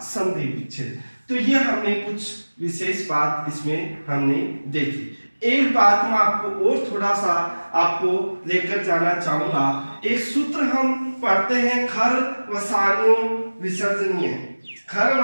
संधि विच्छेद। तो ये हमने कुछ विशेष बात इसमें हमने देखी। एक बात मैं आपको और थोड़ा सा आपको लेकर जाना चाहूंगा। एक सूत्र हम पढ़ते हैं, खर वसान्यो विसर्जनीय। खर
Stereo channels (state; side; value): inverted; both; correlation -1.00